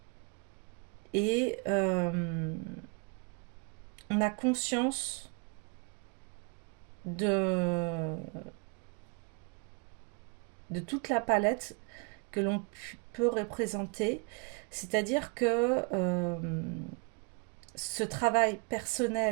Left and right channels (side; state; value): left; quieter; 33.3 dB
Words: Et on a conscience de toute la palette que l'on peut représenter. C'est-à-dire que ce travail